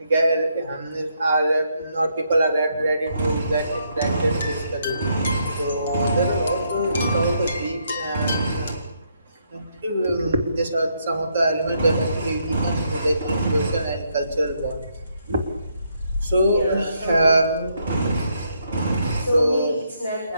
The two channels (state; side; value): inverted; both; correlation -0.76